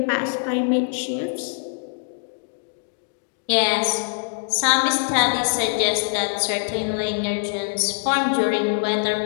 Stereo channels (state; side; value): silent; right; 63 dB below the other